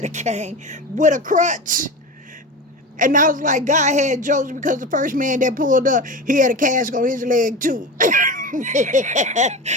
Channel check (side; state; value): both; normal; correlation 0.27